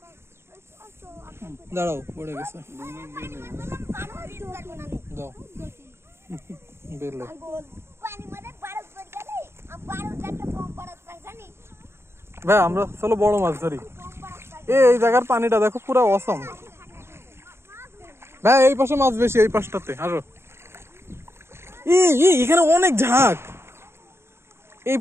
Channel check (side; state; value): left; late; 0.12 ms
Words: দাঁড়াও পড়ে গেছে, দাও বেলে। ভাই আমরা চলো বড় মাছ ধরি। এই জায়গার পানিটা দেখো পুরো অসম। ভাই এই পাশে মাছ বেশি, এই পাশটাতে আরো। এখানে অনেক ঝাঁক। এই